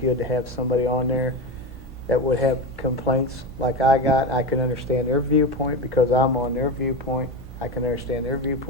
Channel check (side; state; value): both; normal; correlation 0.20